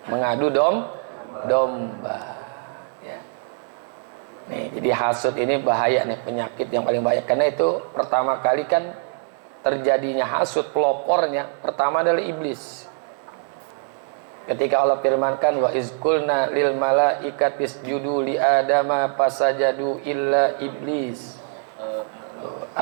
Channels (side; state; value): left; silent; 63 dB below the other